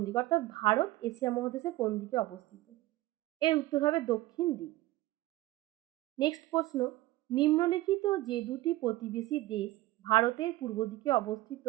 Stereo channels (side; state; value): left; quieter; 17.4 dB